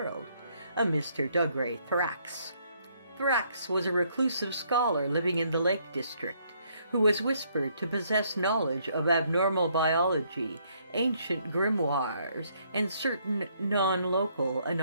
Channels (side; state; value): both; inverted; correlation -0.69